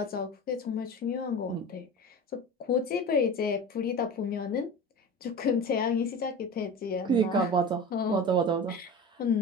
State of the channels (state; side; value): normal; both; correlation 0.32